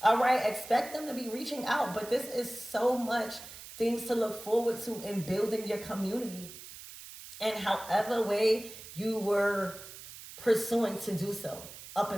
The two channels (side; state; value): right; noise; hiss, 14 dB below the sound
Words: All right, expect them to be reaching out, but this is so much things to look forward to in building your community, and however way you were pursuing to do so up